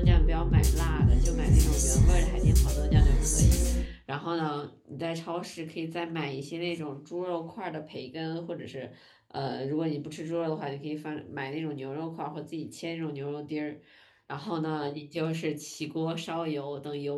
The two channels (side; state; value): both; identical; correlation 1.00